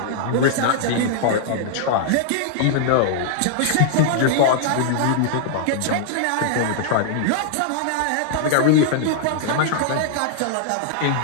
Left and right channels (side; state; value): both; different; correlation -0.01